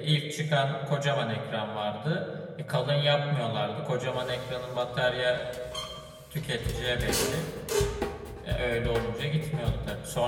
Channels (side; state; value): both; identical; correlation 1.00